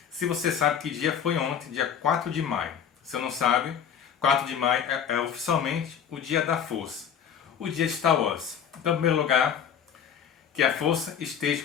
se você sabe que dia foi ontem, dia 4 de maio. Se não sabe, 4 de maio é oficialmente o dia da força, o dia de Star Wars. Então, em primeiro lugar, que a força esteja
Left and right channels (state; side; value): quieter; right; 8.1 dB